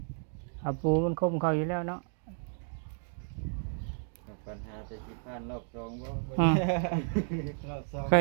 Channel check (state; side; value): silent; left; 56 dB below the other